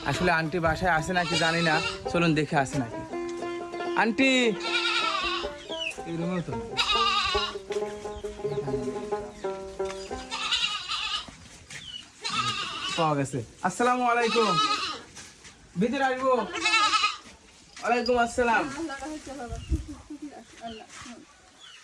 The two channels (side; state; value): both; identical; correlation 1.00